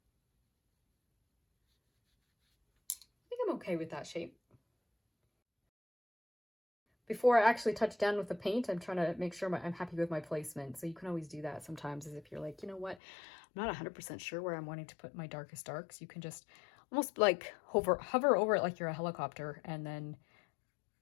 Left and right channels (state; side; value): drops out; right; at 13.0 s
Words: I think I'm okay with that shape. Before I actually touch down with the paint, I'm trying to make sure I'm happy with my placement. So you can always do that sometimes, as if you're like, you know what, I'm not 100% sure where I'm wanting to put my darkest darks. You can just almost like hover over it like you're a helicopter, and